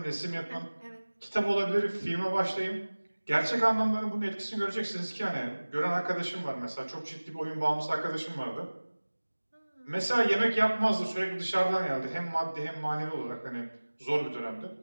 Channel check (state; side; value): inverted; both; correlation -1.00